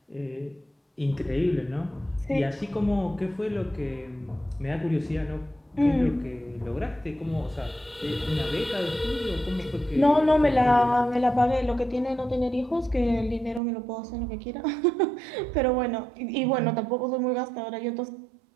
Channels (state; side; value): drops out; left; at 13.6 s